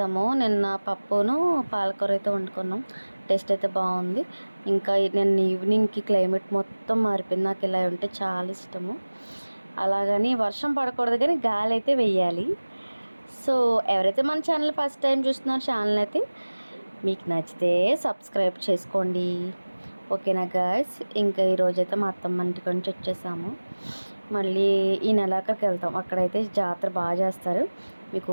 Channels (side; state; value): both; inverted; correlation -1.00